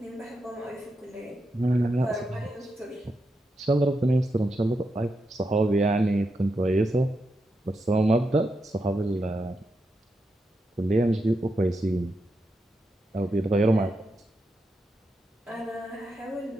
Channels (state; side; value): normal; both; correlation 0.86